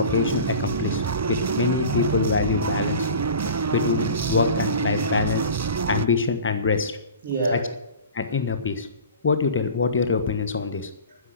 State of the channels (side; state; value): both; inverted; correlation -0.39